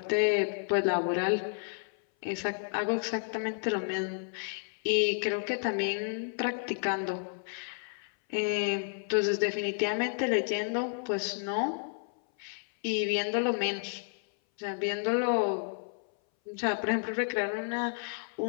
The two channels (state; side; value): silent; right; 57 dB below the other